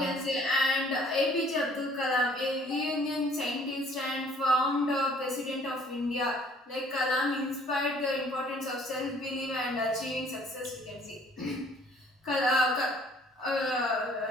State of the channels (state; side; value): normal; both; correlation 0.57